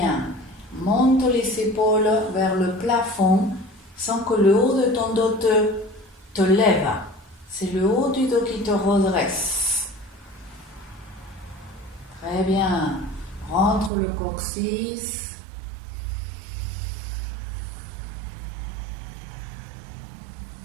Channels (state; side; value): drops out; left; at 13.9 s